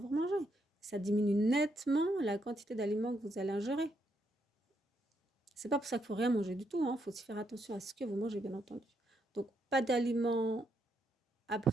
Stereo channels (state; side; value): normal; both; correlation 0.77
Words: vous mangez. Ça diminue nettement la quantité d'aliments que vous allez ingérer. C'est pas pour ça qu'il faut rien manger du tout, hein. Faut aussi faire attention à ce que vous mangez, bien entendu. Donc pas d'aliments